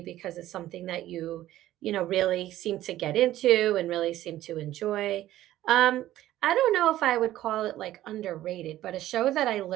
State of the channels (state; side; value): quieter; left; 14.1 dB